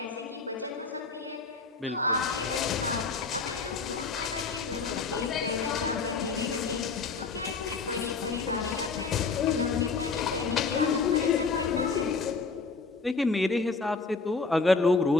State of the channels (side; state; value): right; quieter; 4.4 dB